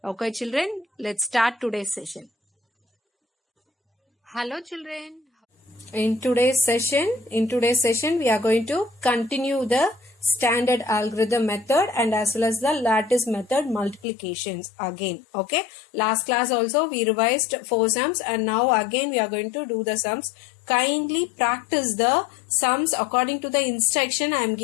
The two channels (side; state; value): right; drops out; at 14.1 s